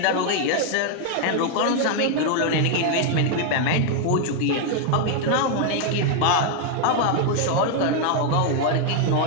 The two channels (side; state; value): both; different; correlation 0.00